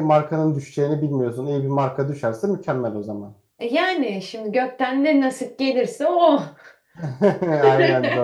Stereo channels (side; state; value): both; identical; correlation 1.00